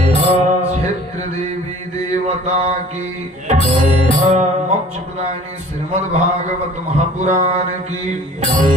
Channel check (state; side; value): normal; both; correlation 0.49